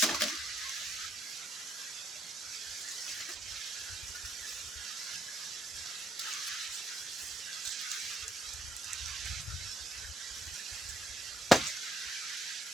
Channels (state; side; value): normal; both; correlation 0.72